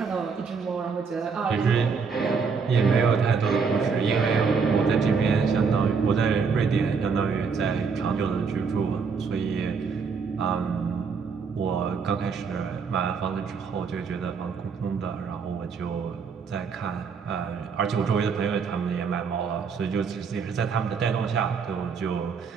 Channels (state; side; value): quieter; left; 5.5 dB